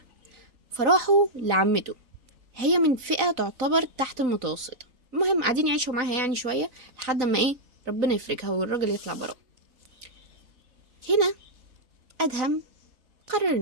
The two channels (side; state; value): left; late; 3.9 ms